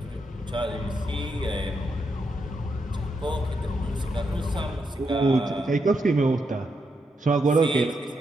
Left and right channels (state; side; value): normal; both; correlation 0.82